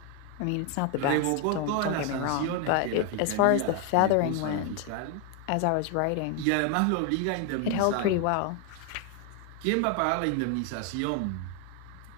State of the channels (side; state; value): both; different; correlation 0.01